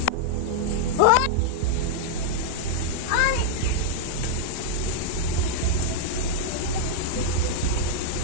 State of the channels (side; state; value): both; different; correlation -0.02